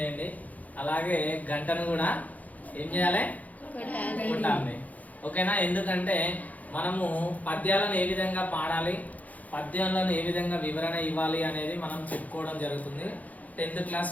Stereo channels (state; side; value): late; right; 0.077 ms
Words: అలాగే గంటను కూడా ఏం చేయాలి, కొట్టాలి. ఓకేనా? ఎందుకంటే మనము పద్యాలను ఏ విధంగా పాడాలి, పద్యాలను ఏ విధంగా వివరణ ఇవ్వాలి అనేది మనం చెప్పుకోవడం జరుగుతుంది. 10th క్లాస్